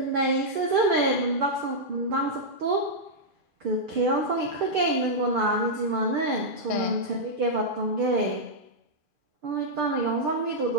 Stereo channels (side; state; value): left; late; 2.4 ms